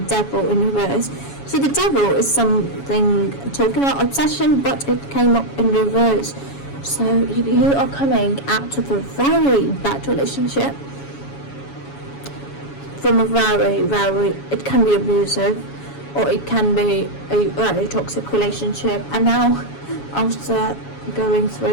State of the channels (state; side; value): late; right; 7.2 ms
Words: Devil in reverse. So the Devil is something talking about obsession, but it came up in reverse. So you are coming out of a very bad relationship, from a very, it can be abusive, or it can be a very toxic relationship, and now after going